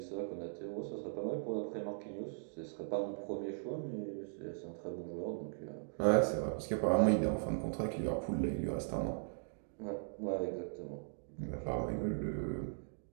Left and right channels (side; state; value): left; silent; digital silence